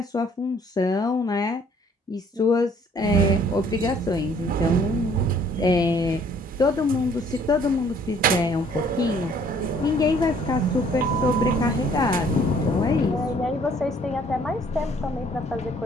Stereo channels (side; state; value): both; normal; correlation 0.59